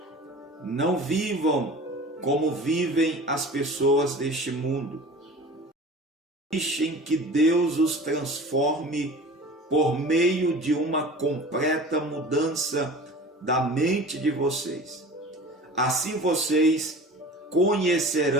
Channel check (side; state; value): both; normal; correlation 0.39